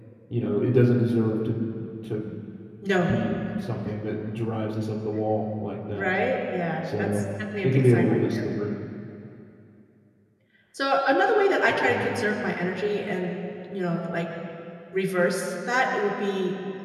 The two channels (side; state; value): both; identical; correlation 1.00